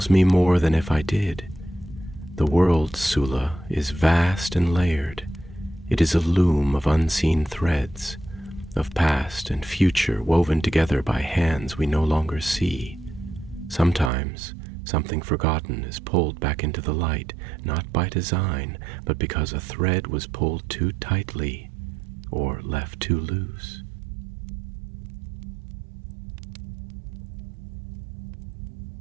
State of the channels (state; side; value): drops out; left; at 14.1 s